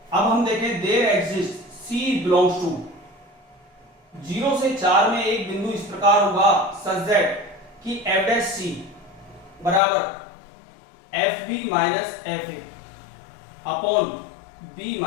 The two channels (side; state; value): right; drops out; at 9.8 s